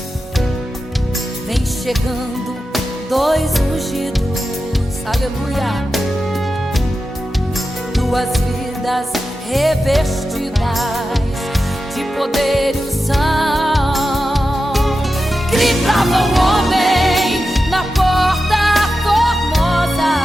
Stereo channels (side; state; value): both; normal; correlation 0.91